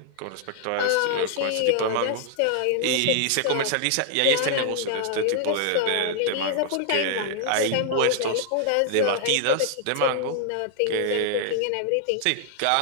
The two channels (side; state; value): both; different; correlation -0.01